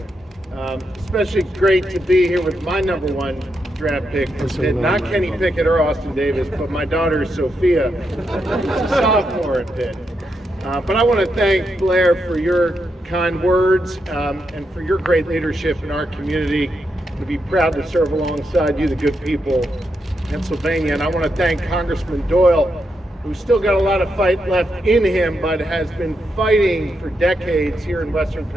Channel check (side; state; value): both; normal; correlation 0.83